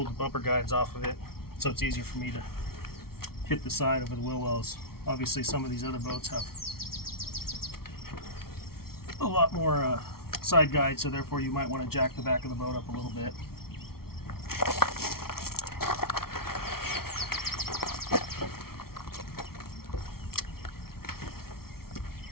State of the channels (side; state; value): right; late; 0.94 ms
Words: the bumper guides off of it, so it's easier for me to hit the side over the wheel wells. Obviously some of these other boats have a lot more side guides, so therefore you might want to jack the back of the boat up a little bit.